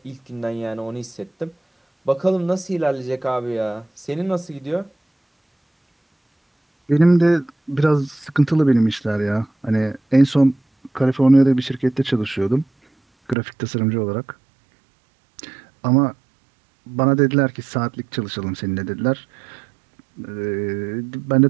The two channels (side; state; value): left; drops out; at 13.4 s